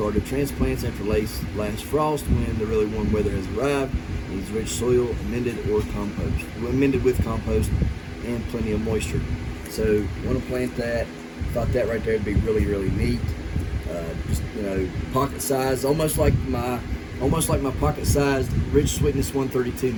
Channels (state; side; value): identical; both; correlation 1.00